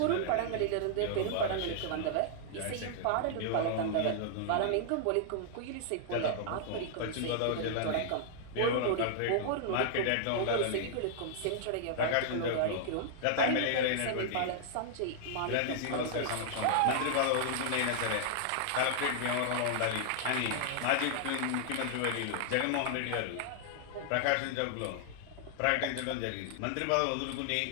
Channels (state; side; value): different; both; correlation -0.01